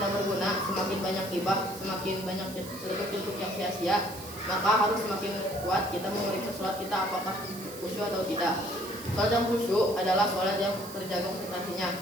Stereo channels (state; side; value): noise; right; hiss, 14 dB below the sound